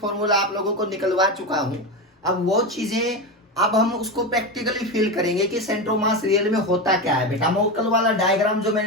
आप लोगों को निकलवा चुका हूं। अब वो चीजें अब हम उसको प्रैक्टिकली फील करेंगे कि सेंटर ऑफ मास रियल में होता क्या है। बेटा मैं कल वाला डायग्राम जो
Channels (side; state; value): both; normal; correlation 0.17